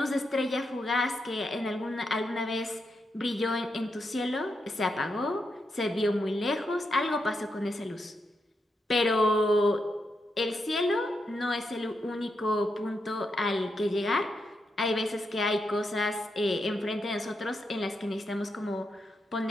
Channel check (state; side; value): normal; both; correlation 0.83